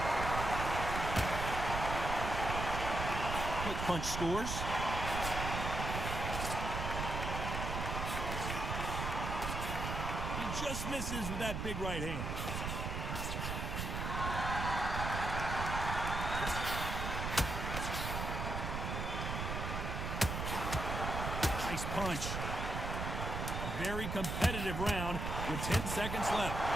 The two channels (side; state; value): right; noise; rumble, 3 dB below the sound